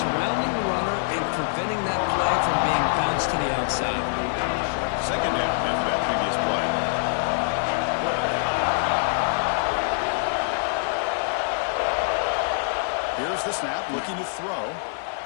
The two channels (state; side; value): silent; right; digital silence